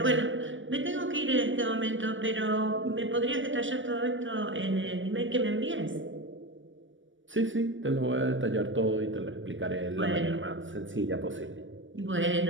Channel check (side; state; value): left; late; 0.56 ms